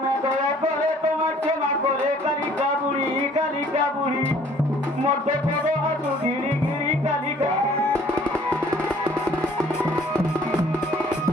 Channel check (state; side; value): normal; both; correlation 0.56